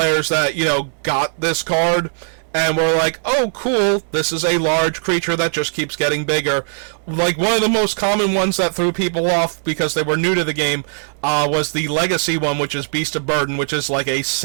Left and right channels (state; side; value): silent; left; digital silence